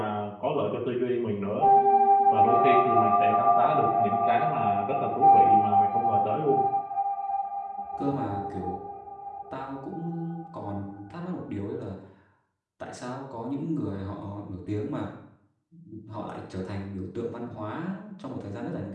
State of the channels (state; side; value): identical; both; correlation 1.00